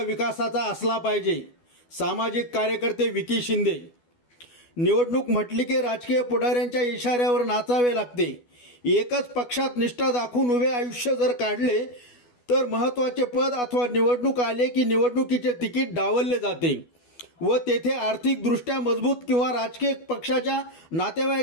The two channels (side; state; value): right; late; 12 ms